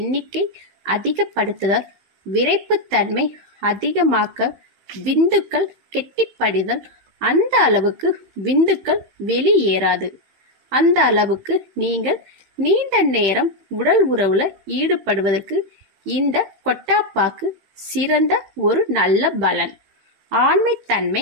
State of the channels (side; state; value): left; late; 15 ms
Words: அதிகப்படுத்துதல், விரைப்பு தன்மை அதிகமாக்க, விந்துக்கள் கெட்டிப்படிதல், அந்த அளவுக்கு விந்துக்கள் வெளியேறாது. அந்த அளவுக்கு நீங்கள் நீண்ட நேரம் உடல் உறவுல ஈடுபடுவதற்கு இந்த கொட்டாப்பாக்கு சிறந்த ஒரு நல்ல பலன். ஆண்மை